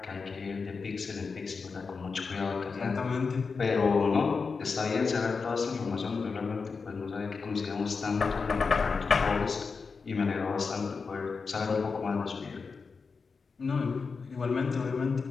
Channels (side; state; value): right; quieter; 4.9 dB